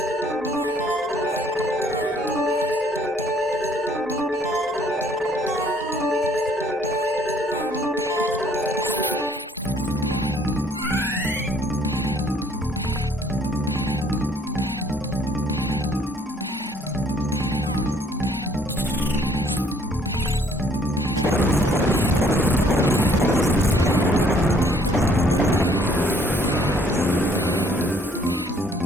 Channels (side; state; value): both; normal; correlation 0.61